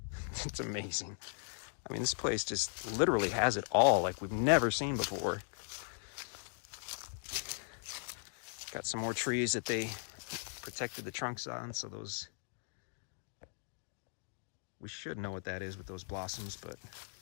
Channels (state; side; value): silent; right; 52 dB below the other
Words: It's amazing. I mean, this place just literally has it all, like we've never seen before. Got some more trees that they protected the trunks on, so those, we should know what that is with those blossoms, but